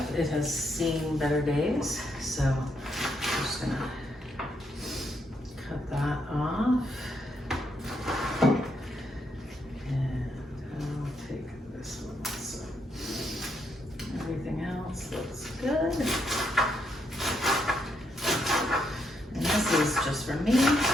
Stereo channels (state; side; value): normal; both; correlation 0.77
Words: It has seen better days, so I'm just gonna cut that off. And I'll take this one also. Everything else looks good. And this is just for me.